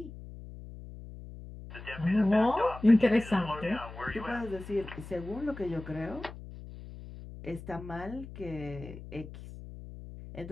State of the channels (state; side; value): noise; left; hum, 13 dB below the sound